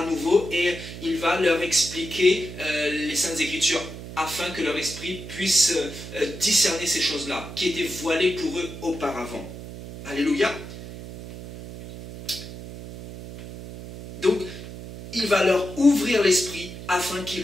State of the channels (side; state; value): right; noise; hum, 12 dB below the sound